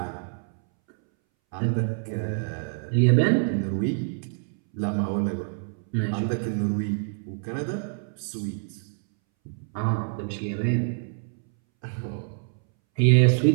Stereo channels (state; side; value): silent; left; 61 dB below the other